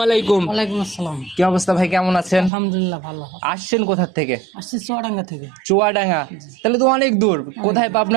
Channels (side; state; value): left; drops out; at 2.5 s